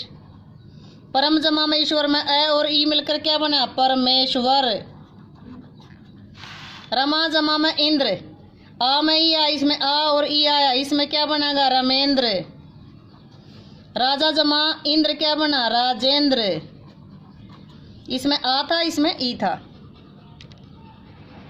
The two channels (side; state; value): both; identical; correlation 1.00